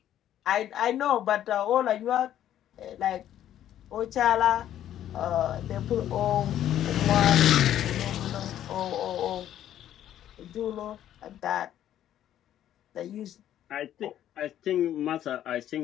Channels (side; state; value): right; quieter; 11.4 dB